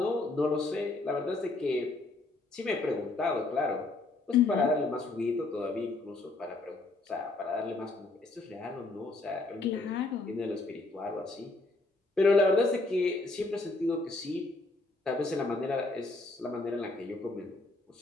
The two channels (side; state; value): right; quieter; 3.1 dB